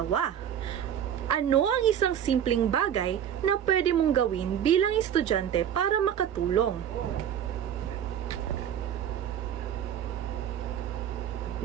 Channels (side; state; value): left; quieter; 9.5 dB